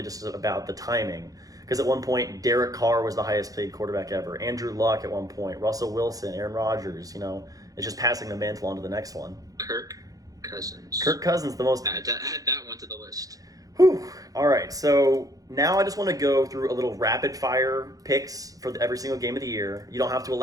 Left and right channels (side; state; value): left; late; 0.17 ms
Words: just about the timing. Because at one point, Derek Carr was the highest paid quarterback ever. Andrew Luck at one point. Russell Wilson, Aaron Rodgers. It's just passing the mantle on to the next one. Kirk Cousins. Kirk Cousins, the most. Add that one to the list. Whew. All right, so now I just want to go through a little rapid fire picks for every single game of the year. You don't have to